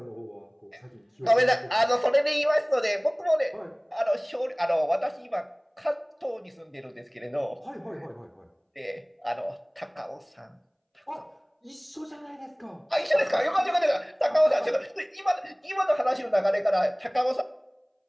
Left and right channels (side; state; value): both; identical; correlation 1.00